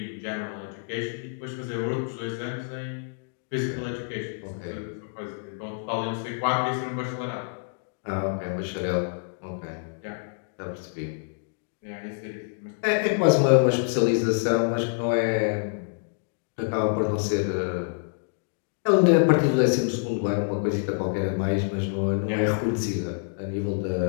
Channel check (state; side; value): silent; right; digital silence